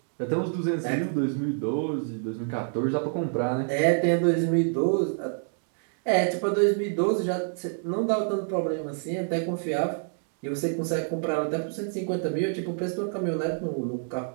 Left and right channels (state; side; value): silent; left; digital silence